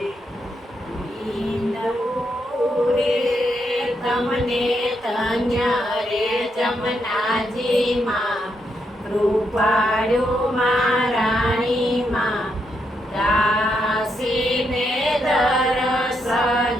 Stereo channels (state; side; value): normal; both; correlation 0.80